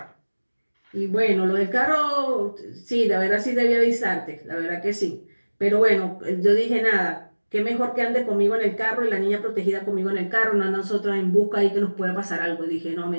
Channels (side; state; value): both; inverted; correlation -1.00